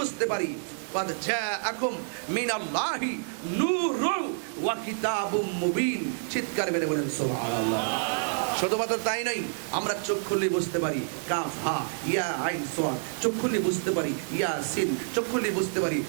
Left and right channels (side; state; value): left; silent; digital silence